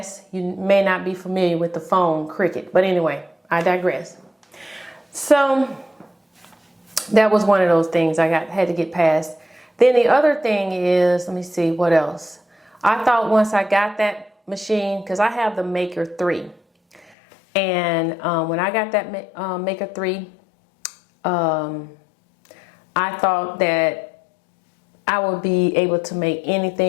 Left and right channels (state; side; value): drops out; right; at 17.2 s